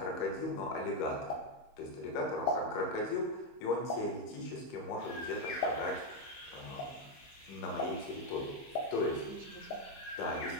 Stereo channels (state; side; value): late; right; 15 ms